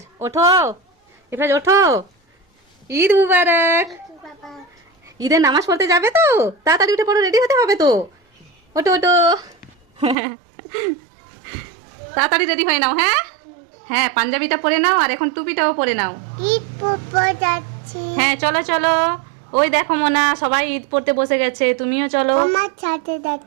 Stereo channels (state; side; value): drops out; left; at 10.2 s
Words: ওঠো, ইফরাজ ওঠো, ঈদ মুবারক। ঈদের নামাজ পড়তে যাবে তো? তাড়াতাড়ি উঠে পড়ো, রেডি হতে হবে তো। ওঠো ওঠো, তাড়াতাড়ি রেডি হয়ে নাও। হ্যাঁ হ্যাঁ, পাঞ্জাবিটা পরে নাও আর এখন টুপিটাও পরে নাও। ঈদ পড়তে যাচ্ছি। হ্যাঁ চলো চলো, ওই দেখো মোনা সবাই ঈদ পড়তে বসে গেছে, তুমিও চলো। আমার সাথে